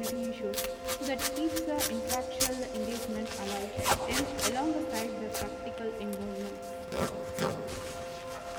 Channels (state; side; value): identical; both; correlation 1.00